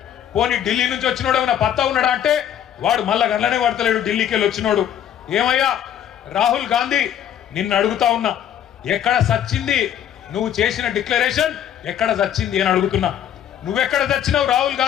పోనీ ఢిల్లీ నుంచి వచ్చినోడు ఏమైనా పత్తా ఉన్నాడా అంటే వాడు మళ్ళా గంటలనే పడతలేడు. ఢిల్లీకి వెళ్ళి వచ్చినోడు ఏమయ్యా రాహుల్ గాంధీ నిన్ను అడుగుతా ఉన్నా, ఎక్కడ సచ్చింది నువ్వు చేసిన డిక్లరేషన్, ఎక్కడ సచ్చింది అని అడుగుతున్నా. నువ్వెక్కడ చచ్చినావు రాహుల్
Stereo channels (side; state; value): right; quieter; 10.0 dB